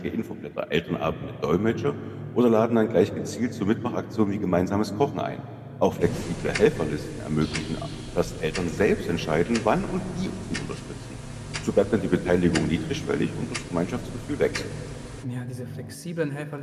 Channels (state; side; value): identical; both; correlation 1.00